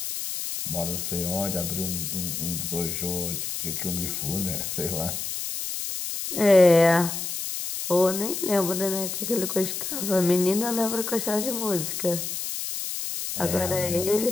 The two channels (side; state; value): left; noise; hiss, 4 dB below the sound